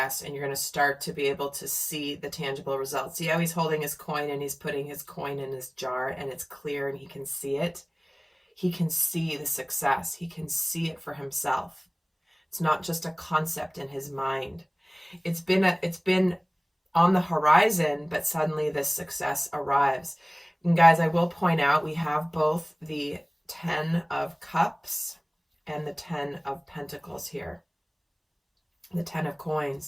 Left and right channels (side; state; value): both; identical; correlation 1.00